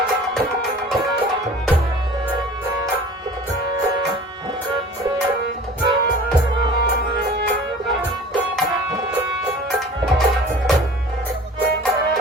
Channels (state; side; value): normal; both; correlation 0.43